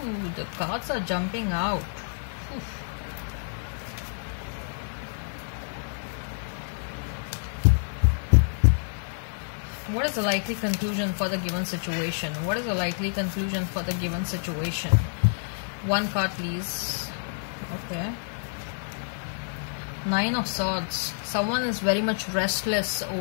the cards are jumping out. Oof. What is the likely conclusion for the given situation? What is the likely conclusion for the given situation? One card, please. Okay. Nine of Swords. Someone is very much restless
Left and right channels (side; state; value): right; silent; digital silence